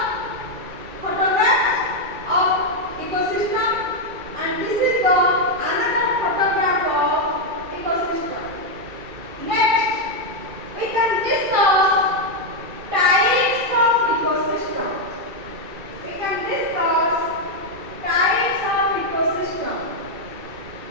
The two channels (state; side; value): late; left; 2.3 ms